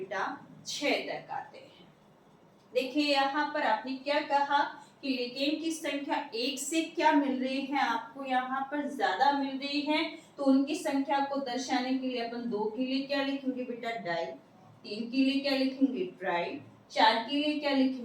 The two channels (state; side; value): identical; both; correlation 1.00